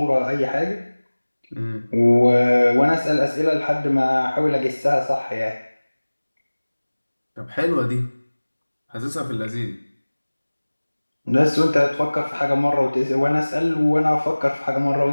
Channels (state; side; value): inverted; both; correlation -1.00